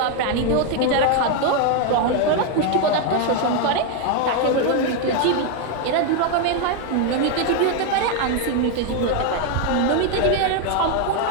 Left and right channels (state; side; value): different; both; correlation 0.01